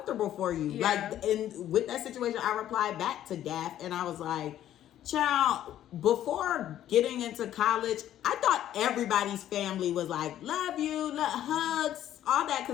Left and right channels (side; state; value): right; quieter; 11.8 dB